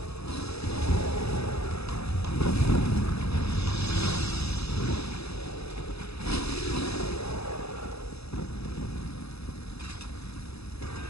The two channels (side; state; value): right; late; 0.78 ms